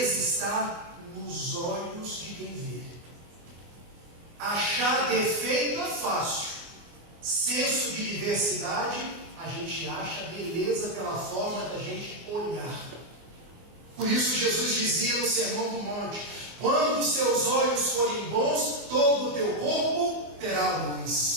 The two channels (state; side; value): late; left; 24 ms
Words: está nos olhos de quem vê. Achar defeito é fácil. Senso de diversidade, a gente acha beleza pela forma da gente olhar. Por isso Jesus dizia no Sermão do Monte: Quando os seus olhos forem bons, todo o teu corpo terá